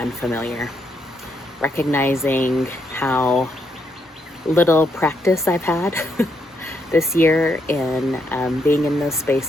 Recognizing how little practice I've had this year in being in those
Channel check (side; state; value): both; normal; correlation 0.77